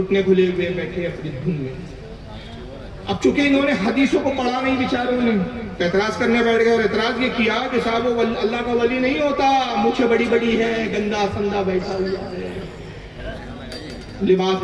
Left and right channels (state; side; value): identical; both; correlation 1.00